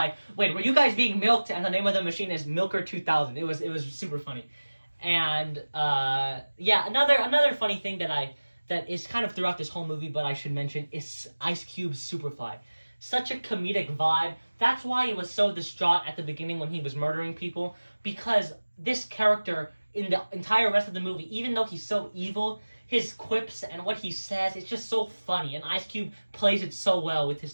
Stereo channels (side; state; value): both; inverted; correlation -1.00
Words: "Wait, were you guys being milked?" And the name of the machine is Milker 2000. It was super funny. And another funny thing that is kind of throughout this whole movie, but I should mention, is Ice Cube's Superfly. Such a comedic vibe. That's why he was so distraught at the beginning when he was murdering people, because this character in the entire rest of the movie, even though he's so evil, his quips and what he says, it's just so funny, and Ice Cube plays it so well with his